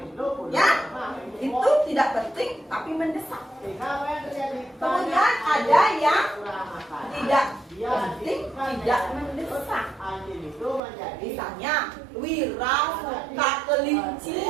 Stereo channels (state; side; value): drops out; left; at 10.8 s